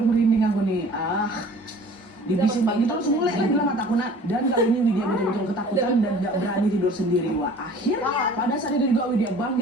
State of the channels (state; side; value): normal; both; correlation 0.48